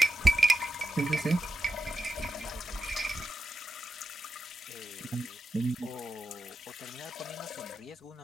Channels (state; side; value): normal; both; correlation 0.87